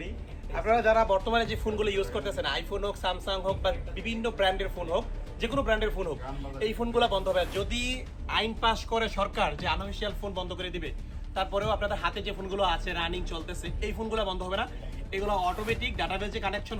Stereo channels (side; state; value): both; identical; correlation 1.00